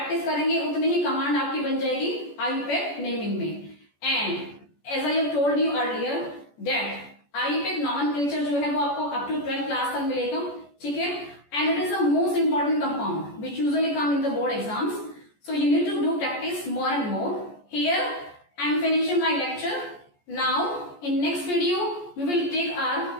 करेंगे उतने ही command आपकी बन जाएगी IUPAC naming में। And as I have told you earlier that IUPAC nomenclature जो है वो आपको अप टू 12th क्लास तक मिलेगा, ठीक है। And it is the most important compound which usually come in the board exams, so you need to do practice more and more. Here I am finishing my lecture. Now in next video we will take our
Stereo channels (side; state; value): right; late; 14 ms